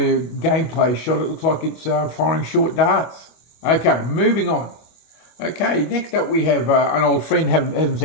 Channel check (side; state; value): right; late; 25 ms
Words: gameplay shot, it looks like it's firing short darts. Okay, moving on. Okay, next up we have an old friend, haven't